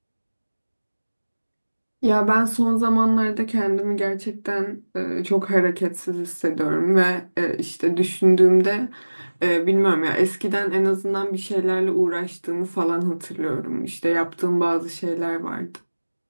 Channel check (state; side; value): inverted; both; correlation -1.00